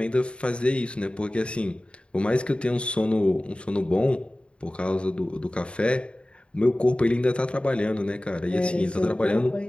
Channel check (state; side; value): late; right; 0.057 ms